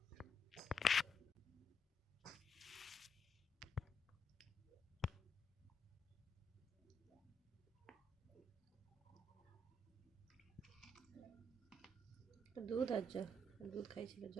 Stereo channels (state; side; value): normal; both; correlation 0.78